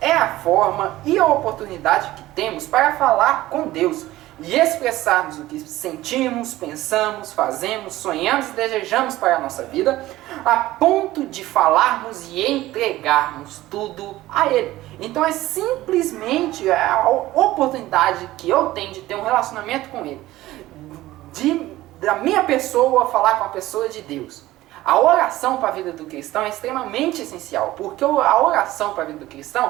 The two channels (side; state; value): left; quieter; 16.4 dB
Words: é a forma e a oportunidade que temos para falar com Deus e expressarmos o que sentimos, pensamos, fazemos, sonhamos e desejamos para a nossa vida, a ponto de falarmos e entregarmos tudo a Ele. Então é simplesmente a oportunidade que eu tenho de ter um relacionamento com Ele, da minha pessoa falar com a pessoa de Deus. A oração para a vida do cristão é extremamente essencial, porque a oração para a vida do